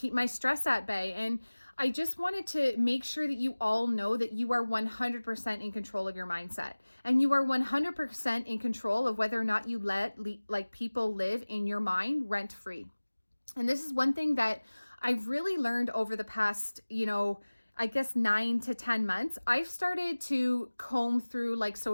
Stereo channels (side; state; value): both; inverted; correlation -1.00